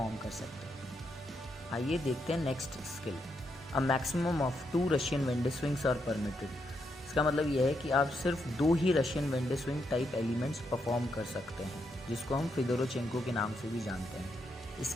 कर सकते हैं। आइए देखते हैं next skill. A maximum of 2 Russian wende swings are permitted. इसका मतलब यह है कि आप सिर्फ 2 ही Russian wende swing type elements perform कर सकते हैं, जिसको हम फिदोरोचेंको के नाम से भी जानते हैं।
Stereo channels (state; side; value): normal; both; correlation 0.80